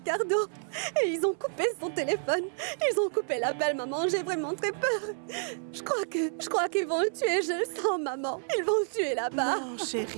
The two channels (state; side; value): silent; left; 58 dB below the other